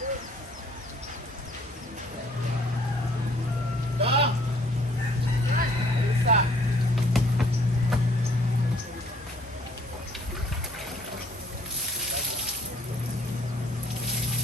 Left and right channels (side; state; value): both; normal; correlation 0.60